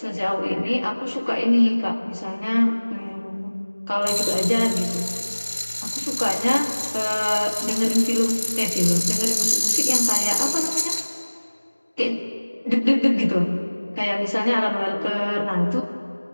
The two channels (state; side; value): inverted; both; correlation -1.00